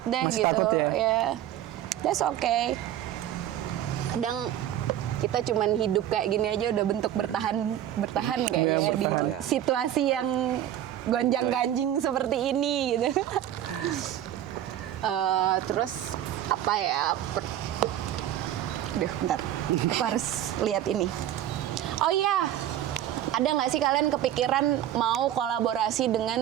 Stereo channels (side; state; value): left; quieter; 11.7 dB